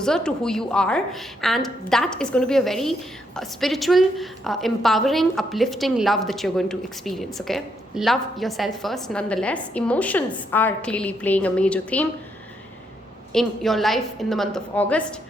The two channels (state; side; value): normal; both; correlation 0.76